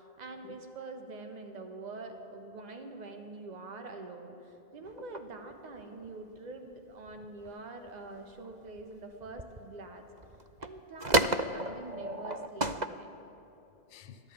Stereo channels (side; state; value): left; late; 2.0 ms